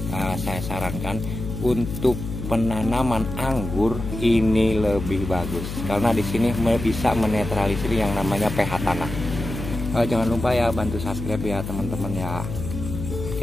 saya sarankan untuk penanaman anggur ini lebih bagus karena di sini bisa menetralisir yang namanya pH tanah. Jangan lupa ya bantu subscribe ya teman-teman ya.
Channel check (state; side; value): noise; left; hum, 7 dB below the sound